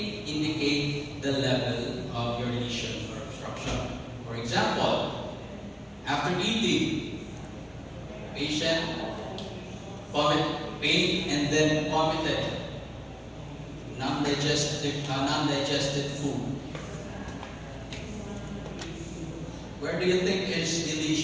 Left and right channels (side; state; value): both; identical; correlation 1.00